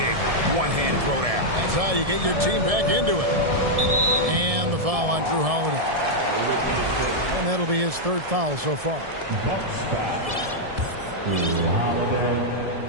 one-hand throwdown. That's how you get your team back into it. And the foul on Drew Holiday. And that'll be his third foul so far. Bucks foul. Drew Holiday.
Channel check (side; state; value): left; late; 1.7 ms